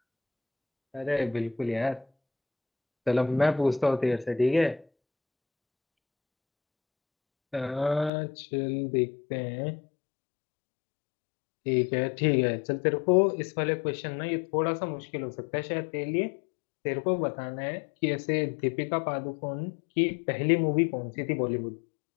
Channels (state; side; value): drops out; right; at 8.1 s